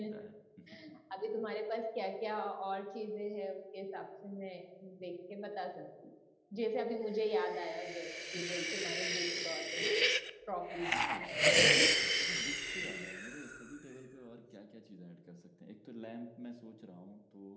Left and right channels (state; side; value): identical; both; correlation 1.00